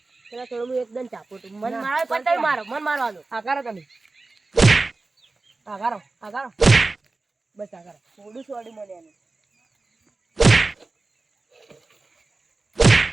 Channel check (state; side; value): quieter; left; 3.5 dB